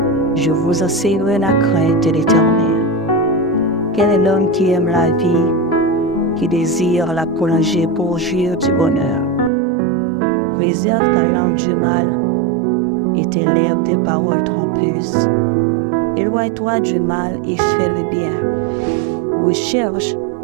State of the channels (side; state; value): left; drops out; at 9.5 s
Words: Je vous enseignerai la crainte de l'Éternel. Quel est l'homme qui aime la vie, qui désire la prolonger pour jouir du bonheur? Préserve ta langue du mal et tes lèvres des paroles trompeuses. Éloigne-toi du mal et fais le bien. Recherche